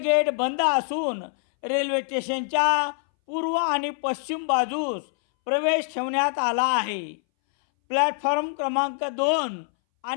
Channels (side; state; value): right; silent; 61 dB below the other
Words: बंद असून रेल्वे स्टेशनच्या पूर्व आणि पश्चिम बाजूस प्रवेश ठेवण्यात आला आहे। प्लॅटफॉर्म क्रमांक 2